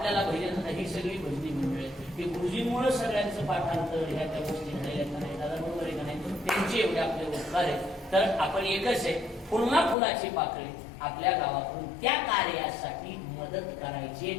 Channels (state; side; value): drops out; right; at 10.0 s